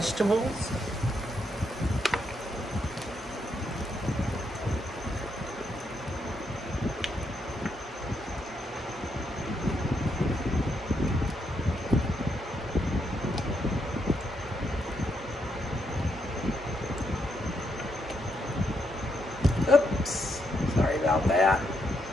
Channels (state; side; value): normal; both; correlation 0.78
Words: Oops, sorry about that.